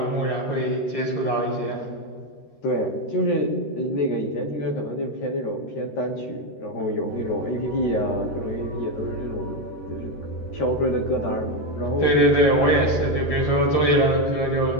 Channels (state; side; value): late; right; 13 ms